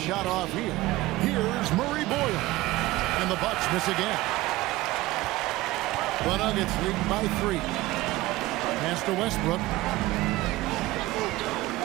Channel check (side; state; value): left; quieter; 18.4 dB